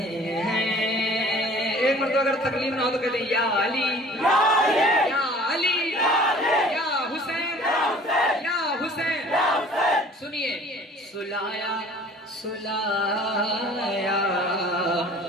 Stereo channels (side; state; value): both; normal; correlation 0.49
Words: हैं। एक मर्तबा अगर तकलीफ ना हो तो कहते या अली या अली या हुसैन या हुसैन। सुनिए, सुलाया सुलाया